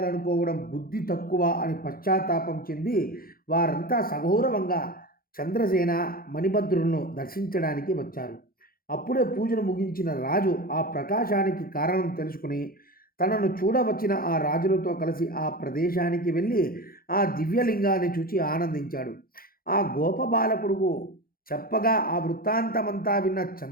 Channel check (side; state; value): right; late; 0.42 ms